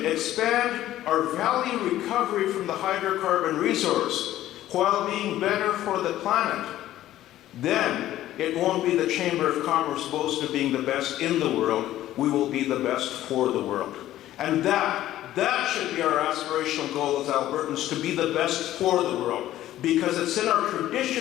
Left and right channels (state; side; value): quieter; right; 13.7 dB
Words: expand our value recovery from the hydrocarbon resource while being better for the planet, then it won't be the Chamber of Commerce boast of being the best in the world. We will be the best for the world. And that should be our aspirational goal as Albertans, to be the best for the world. Because it's in our